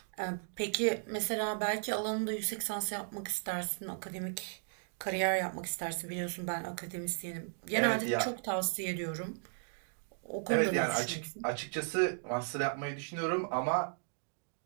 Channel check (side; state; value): left; silent; digital silence